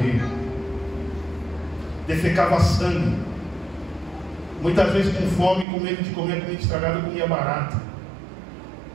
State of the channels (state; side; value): drops out; left; at 5.7 s